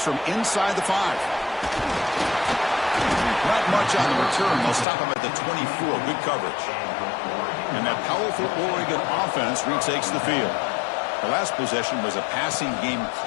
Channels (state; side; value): drops out; right; at 4.9 s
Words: from inside the 5. Not much on the return. They'll stop him at the 24. Good coverage. And that powerful Oregon offense retakes the field. The last possession was a passing game